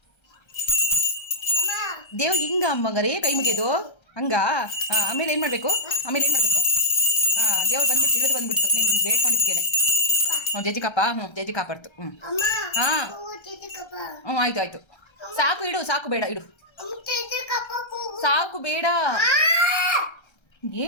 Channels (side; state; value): right; late; 1.3 ms